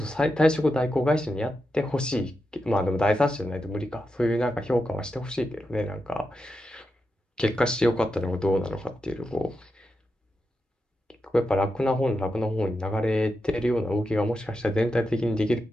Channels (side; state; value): both; normal; correlation 0.88